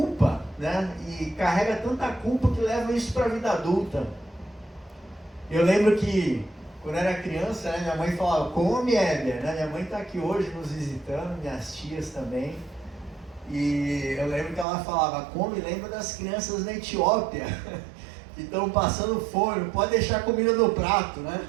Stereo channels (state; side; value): drops out; left; at 14.7 s